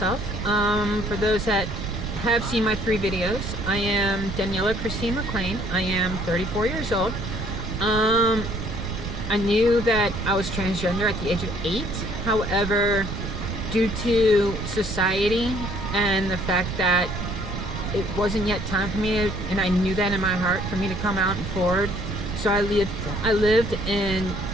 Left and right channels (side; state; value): right; noise; rumble, 5 dB below the sound